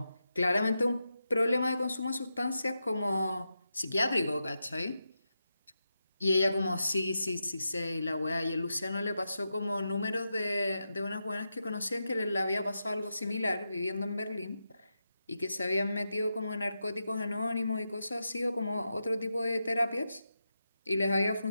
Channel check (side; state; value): both; inverted; correlation -0.88